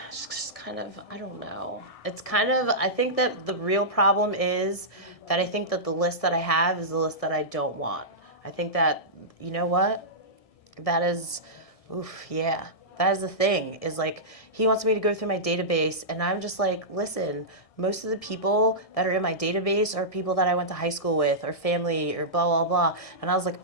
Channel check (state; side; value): late; right; 1.6 ms